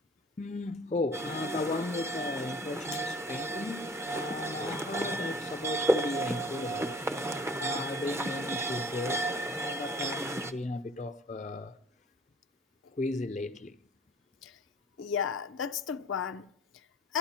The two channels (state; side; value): normal; both; correlation 0.51